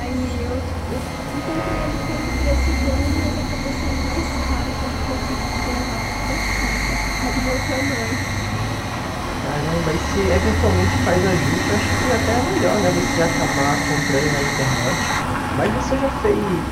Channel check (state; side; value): identical; both; correlation 1.00